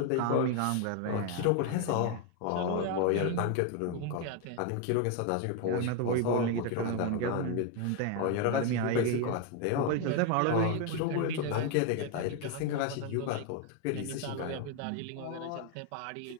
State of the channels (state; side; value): different; both; correlation 0.01